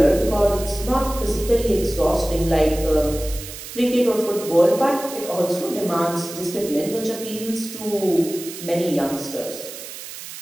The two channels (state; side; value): noise; right; hiss, 12 dB below the sound